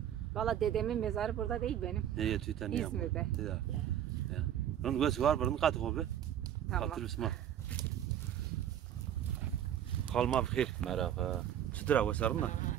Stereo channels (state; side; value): quieter; left; 10.4 dB